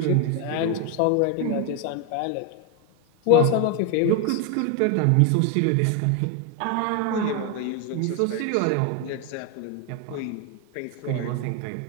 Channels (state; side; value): different; both; correlation 0.01